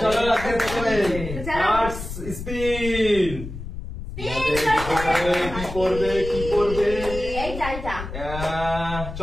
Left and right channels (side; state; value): left; noise; rumble, 8 dB below the sound